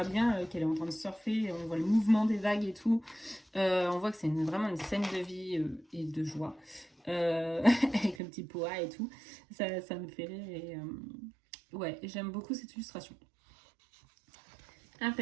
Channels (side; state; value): left; drops out; at 8.2 s